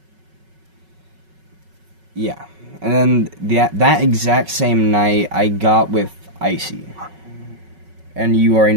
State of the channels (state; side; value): late; left; 5.4 ms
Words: yeah, and then that exact same night, I got with Icy, and you already